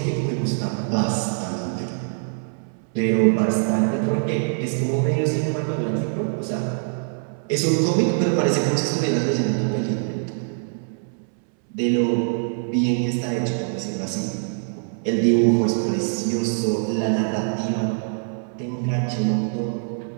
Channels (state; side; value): silent; left; 63 dB below the other